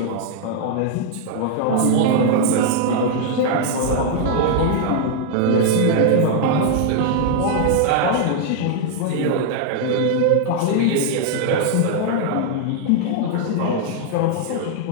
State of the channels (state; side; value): different; both; correlation 0.00